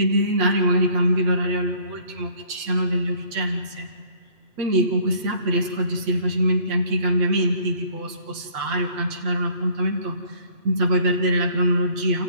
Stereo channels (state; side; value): late; left; 8.5 ms